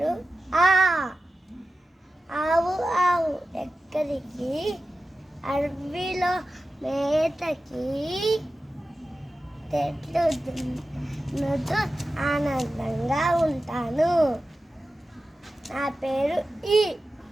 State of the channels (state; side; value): normal; both; correlation 0.94